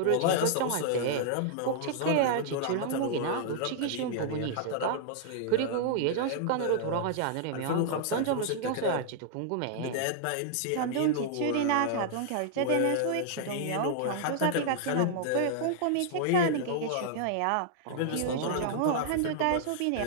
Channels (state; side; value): different; both; correlation -0.01